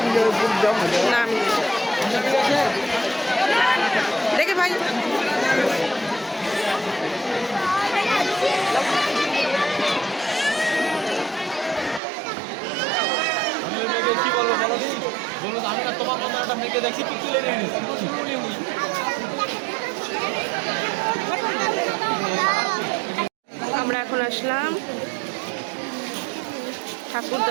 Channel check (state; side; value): drops out; left; at 12.0 s